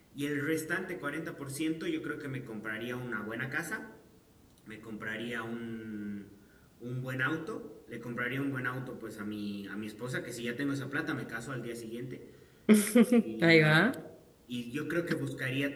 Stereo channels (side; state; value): both; identical; correlation 1.00